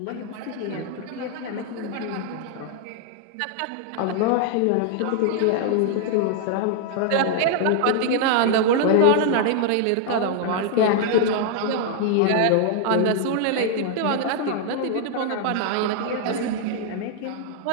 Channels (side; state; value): both; different; correlation 0.00